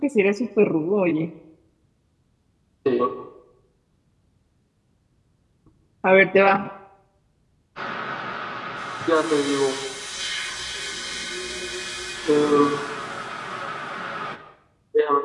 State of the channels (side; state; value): both; identical; correlation 1.00